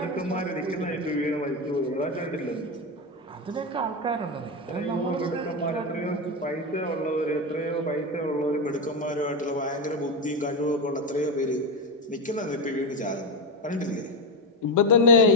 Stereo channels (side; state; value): both; normal; correlation 0.12